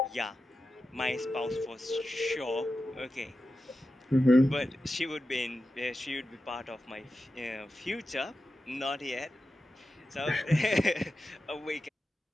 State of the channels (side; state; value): both; normal; correlation 0.91